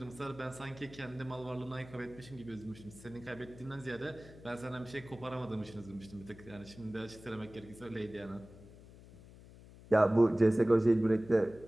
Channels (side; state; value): left; noise; hum, 19 dB below the sound